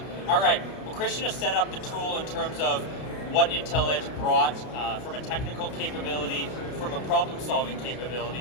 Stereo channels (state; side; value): late; right; 32 ms